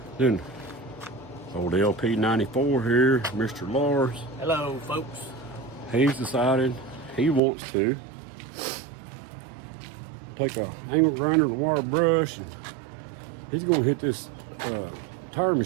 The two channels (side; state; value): left; drops out; at 7.4 s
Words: Then old LP94 here, Mr. Lars. Hello folks. He's decided he wants to take a angle grinder and a wire brush, and he's going to hit this tire